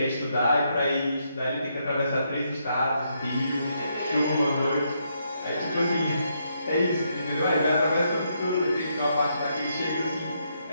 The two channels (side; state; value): both; inverted; correlation -0.77